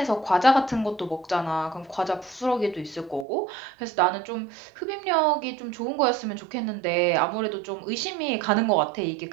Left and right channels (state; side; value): drops out; left; at 3.2 s